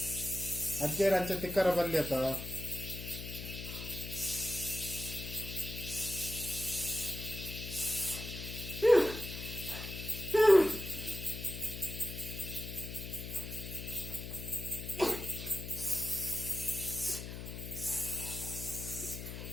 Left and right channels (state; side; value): noise; left; hum, 8 dB below the sound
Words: ಅಜ್ಜೇರ ಅಂಚೆ ತಿಕ್ಕರ ಬಲ್ಲಿ ಅತ್ತ